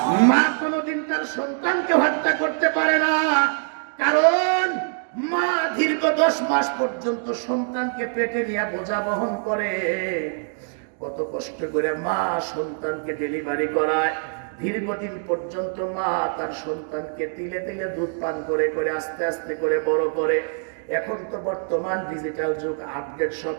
মা কোনোদিন তার সন্তানকে হত্যা করতে পারে না, কারণ মা দীর্ঘ 10 মাস পর্যন্ত সন্তানকে পেটে নিয়ে বোঝা বহন করে। কত কষ্ট করে মা সন্তানকে ডেলিভারি করায়, দীর্ঘদিন পর্যন্ত মা তার সন্তানকে তিলে তিলে দুধ পান করে করে আস্তে আস্তে করে বড় করে। এখন তো বর্তমান ডিজিটাল যুগ, আপডেট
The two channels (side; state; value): left; silent; digital silence